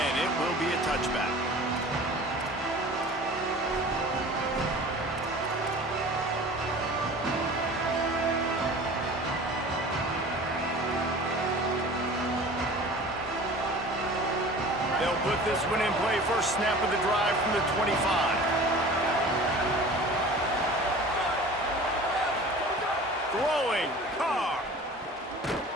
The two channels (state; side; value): normal; both; correlation 0.41